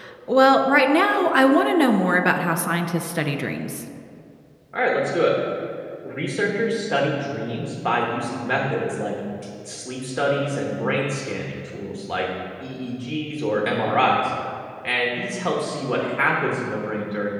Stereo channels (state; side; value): identical; both; correlation 1.00